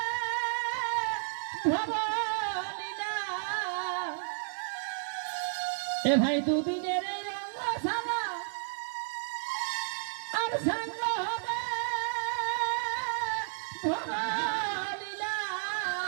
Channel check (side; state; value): left; silent; digital silence